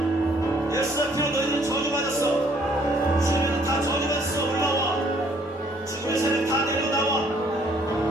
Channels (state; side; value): normal; both; correlation 0.63